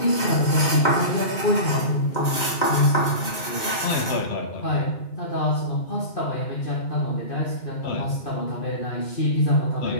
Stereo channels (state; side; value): late; right; 2.1 ms